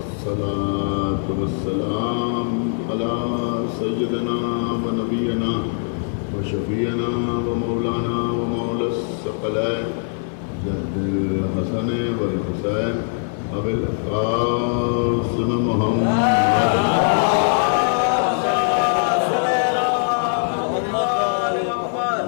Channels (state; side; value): silent; right; 58 dB below the other